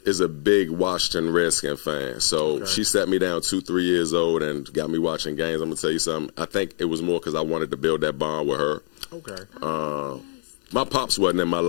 is a big Washington Redskin fan. So she sat me down 2-3 years old and got me watching games. I'm gonna tell you something. I think it was more because I wanted to build that bond with her. Okay. My pops wasn't in my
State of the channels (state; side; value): silent; right; digital silence